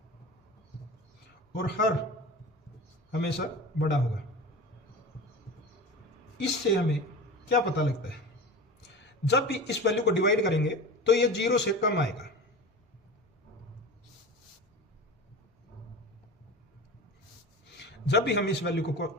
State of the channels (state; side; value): normal; both; correlation 0.32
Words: और हर हमेशा बड़ा होगा। इससे हमें क्या पता लगता है, जब भी इस वैल्यू को डिवाइड करेंगे तो ये 0 से कम आएगा, जब भी हम इस वैल्यू को